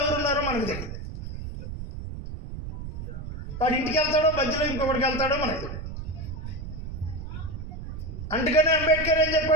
ఎవరున్నారో మనకు తెలియదు. వాడు ఇంటికి వెళ్తాడో మధ్యలో ఇంకొకటికి వెళ్తాడో మనకు తెలియదు. అందుకనే అంబేద్కర్ ఏం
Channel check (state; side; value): noise; right; rumble, 8 dB below the sound